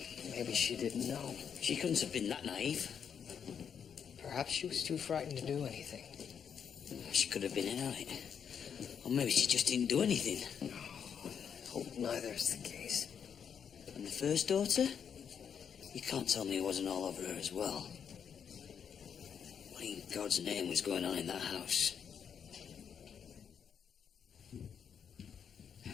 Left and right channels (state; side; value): quieter; right; 7.5 dB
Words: Maybe she didn't know. She couldn't have been that naive. Perhaps she was too frightened to do anything. She could have been in on it. Or maybe she just didn't do anything. I hope neither is the case. And the first daughter? You can't tell me it wasn't all over her as well. What in God's name was going on in that house?